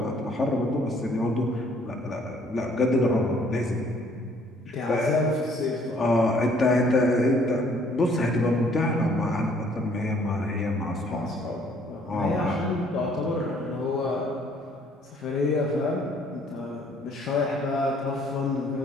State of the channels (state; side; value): normal; both; correlation 0.61